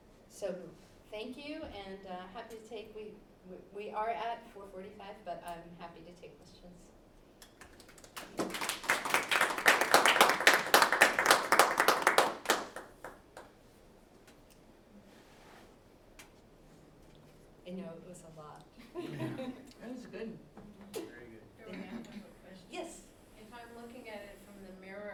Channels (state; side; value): identical; both; correlation 1.00